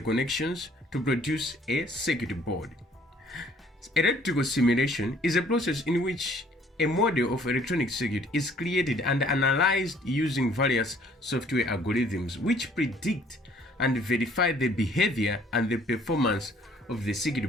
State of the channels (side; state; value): both; normal; correlation 0.59